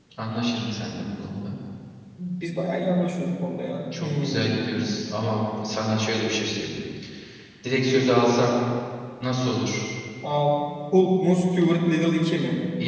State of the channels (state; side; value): identical; both; correlation 1.00